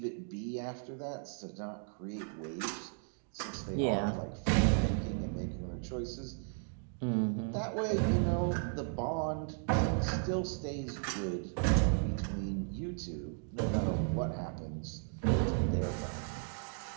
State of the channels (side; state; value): left; silent; 54 dB below the other